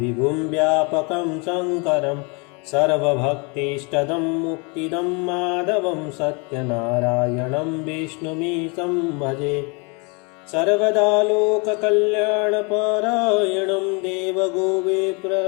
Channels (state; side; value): quieter; right; 31.7 dB